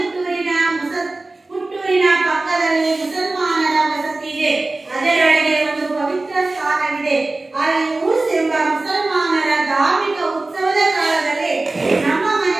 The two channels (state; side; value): quieter; left; 3.1 dB